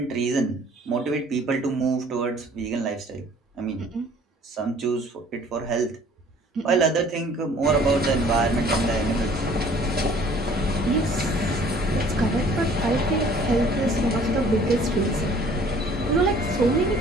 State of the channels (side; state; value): both; normal; correlation 0.54